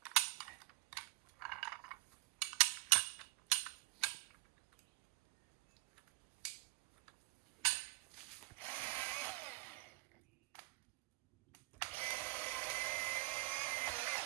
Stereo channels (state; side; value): quieter; left; 23.5 dB